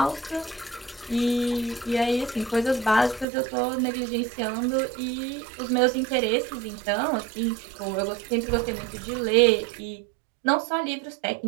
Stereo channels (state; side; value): drops out; left; at 3.2 s